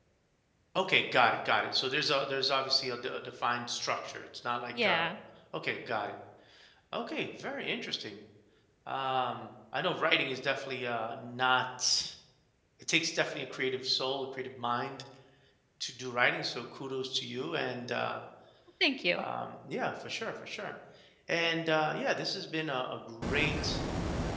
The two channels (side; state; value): both; identical; correlation 1.00